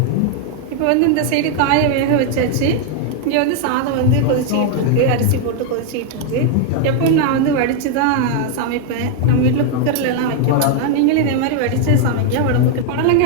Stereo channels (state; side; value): different; both; correlation 0.00